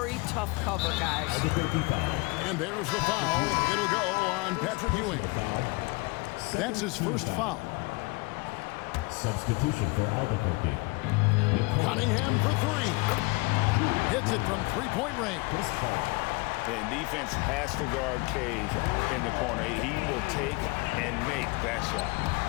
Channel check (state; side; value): quieter; right; 25.8 dB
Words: tough cover, guys. And there's the foul. It'll go on Patrick Ewing. That's his first foul. Substitution for Albuquerque. Cunningham for 3. Hits it from three-point range. And defense has to guard Cave in the corner. He will take and make that shot.